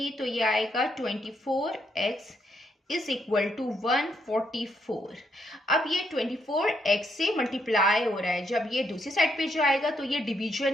तो ये आएगा 24x इज इक्वल टू 144। अब ये 24x से मल्टीप्लाई हो रहा है। जब ये दूसरी साइड पे जाएगा तो ये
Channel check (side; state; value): both; normal; correlation 0.76